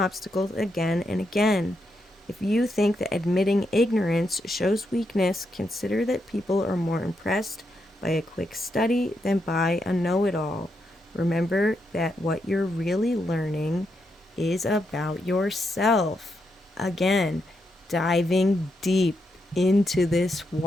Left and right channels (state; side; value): normal; both; correlation 0.82